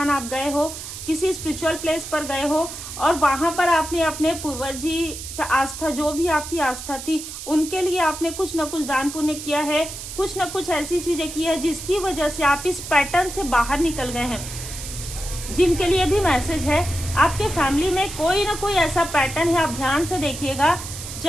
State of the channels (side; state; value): right; noise; hiss, 10 dB below the sound